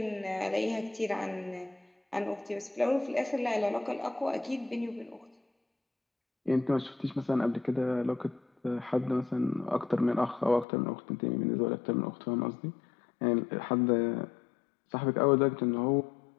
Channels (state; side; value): drops out; right; at 10.7 s